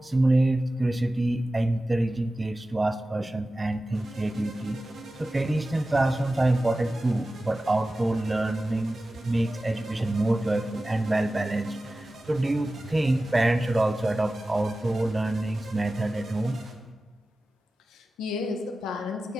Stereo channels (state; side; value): normal; both; correlation 0.95